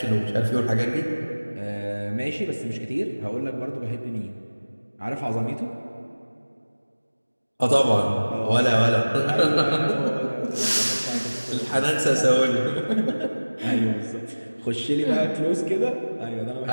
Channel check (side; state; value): both; inverted; correlation -1.00